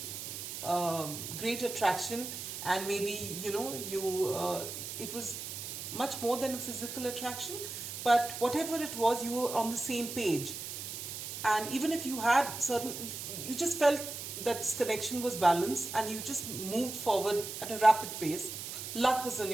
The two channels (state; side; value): noise; right; hiss, 7 dB below the sound